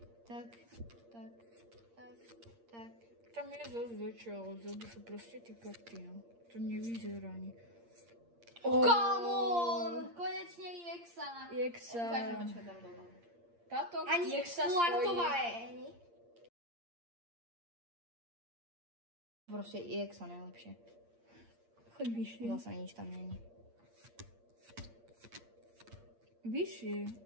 Tak. Tam je zase dačo, ale vzadu sú proste tie karty, no. To nevyzerá ani. Come on! Konečne EXA. EXA. Ukážeme, čo je tam doma. Táto Ani EXA Quartová stojí. je, ani. Proste EXA najlepšie. Choď vyššie. Zase nič tam není. Vyššie.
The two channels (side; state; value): left; late; 8.6 ms